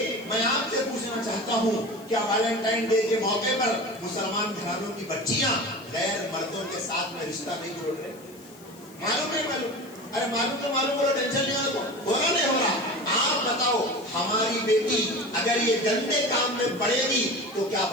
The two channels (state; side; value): noise; left; hiss, 24 dB below the sound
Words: मैं आपसे पूछना चाहता हूँ, क्या वैलेंटाइन डे के मौके पर मुसलमान घरानों की बच्चियां गैर मर्दों के साथ में रिश्ता नहीं जोड़ रहे? मालूम है? मालूम? अरे मालूम तो मालूम, बोलो, टेंशन नहीं हो रहा नहीं हो रहा। आप बताओ, हमारी बेटी अगर ये गंदे काम में पड़ेगी तो क्या